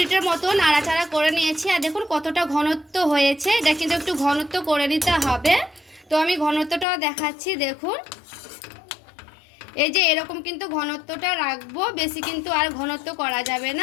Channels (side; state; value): right; drops out; at 6.9 s